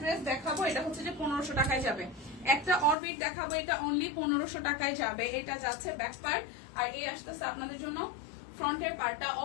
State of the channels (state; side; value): drops out; right; at 3.0 s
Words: ড্রেস দেখাবো, এটা হচ্ছে যে 1500 টাকায় যাবে। একটা অরবিট দেখাবো, এটা অনলি 1500 টাকায় যাবে। এটা যাচ্ছে ব্যাক পার্ট, আর এই আসতেছে আপনাদের জন্য ফ্রন্টের পার্টটা।